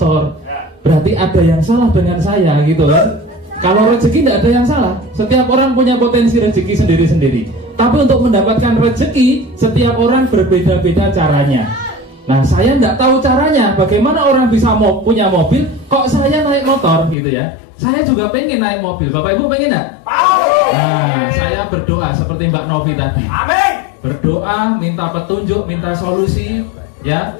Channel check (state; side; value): drops out; right; at 17.2 s